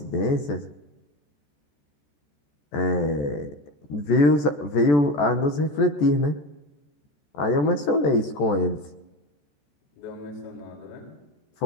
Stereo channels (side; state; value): right; late; 14 ms